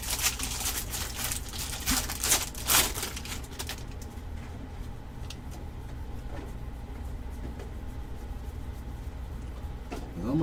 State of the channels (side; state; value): both; identical; correlation 1.00